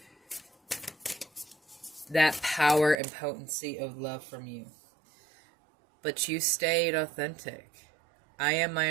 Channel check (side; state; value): left; drops out; at 3.0 s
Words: that power and potency of love from you. But you stayed authentic. I am